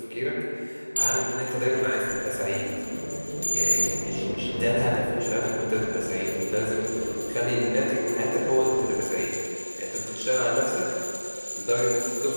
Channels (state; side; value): inverted; both; correlation -1.00